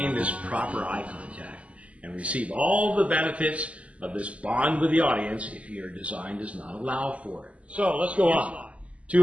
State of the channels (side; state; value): left; late; 0.064 ms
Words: this proper eye contact and receive all the benefits of this bond with the audience if your design does not allow for it. So let's go on.